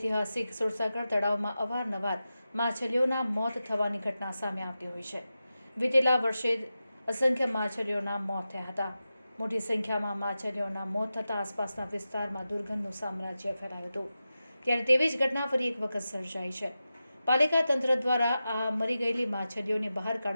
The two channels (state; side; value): inverted; both; correlation -0.92